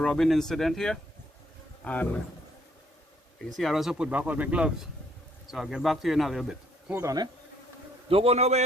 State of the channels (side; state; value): both; normal; correlation 0.65